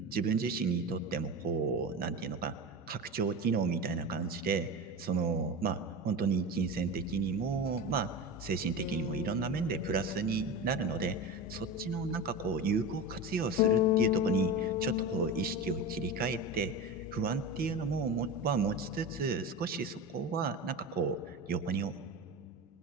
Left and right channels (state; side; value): normal; both; correlation 0.25